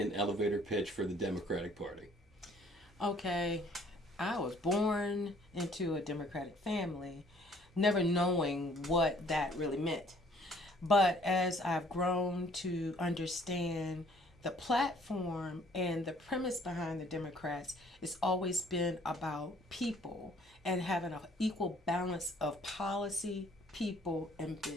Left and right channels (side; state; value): both; normal; correlation 0.59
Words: elevator pitch for the Democratic Party. Okay, I was born into a Democratic family, never knowing what that really meant. But as I've grown to understand the platform and the premise behind the Democrats, it's always been about people and having an equal balance of policy, people, and